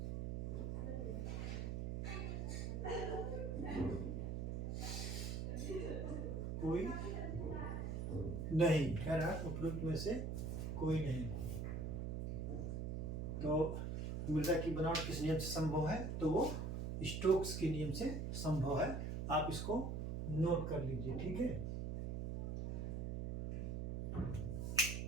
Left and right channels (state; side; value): noise; right; hum, 2 dB below the sound